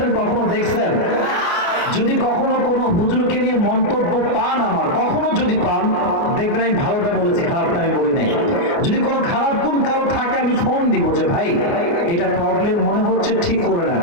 কখনো দেখছেন? যদি কখনো কোনো হুজুরকে নিয়ে মন্তব্য পান, আমার কখনো যদি পান, দেখবেন আমি ভালোটা বলেছি, খারাপটা আমি বলি নাই। যদি কোনো খারাপ গুণ কারো থাকে, আমি ফোন দিব যে ভাই এটা প্রবলেম মনে হচ্ছে, ঠিক করে নেন।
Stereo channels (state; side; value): late; right; 29 ms